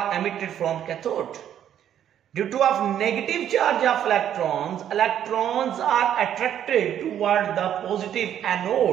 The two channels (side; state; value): left; quieter; 10.2 dB